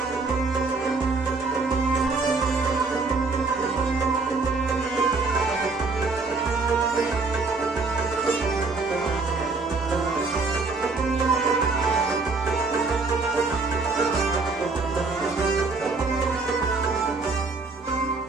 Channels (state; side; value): quieter; left; 4.0 dB